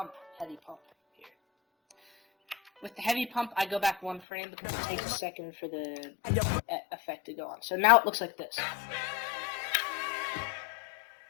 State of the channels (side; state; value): right; drops out; at 4.2 s